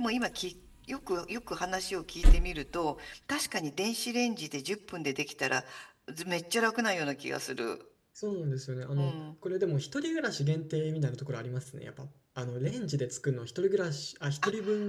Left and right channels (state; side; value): identical; both; correlation 1.00